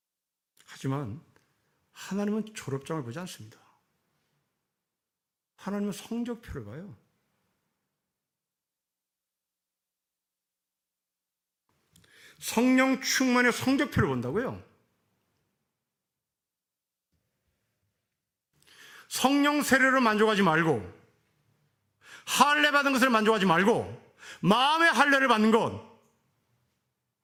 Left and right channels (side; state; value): both; identical; correlation 1.00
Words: 하지만 하나님은 졸업장을 보지 않습니다. 하나님은 성적표를 봐요. 성령 충만의 성적표를 본다고요. 성령 세례로 만족하지 말고, 할례 받은 것을 만족하지 말고, 마음의 할례를 받는 것,